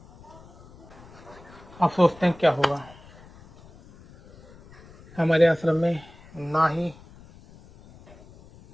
आप सोचते हैं क्या होगा, हमारे आश्रम में ना ही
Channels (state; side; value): noise; left; rumble, 23 dB below the sound